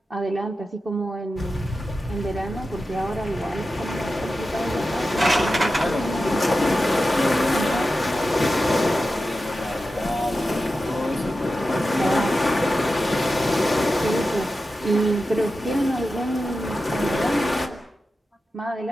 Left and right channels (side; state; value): both; normal; correlation 0.92